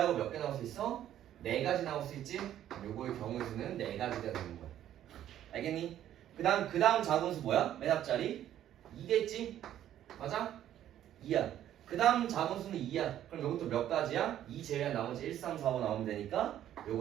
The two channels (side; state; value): left; quieter; 11.5 dB